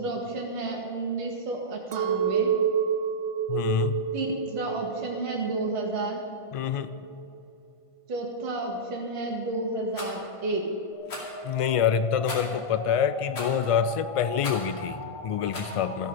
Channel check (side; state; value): right; late; 1.5 ms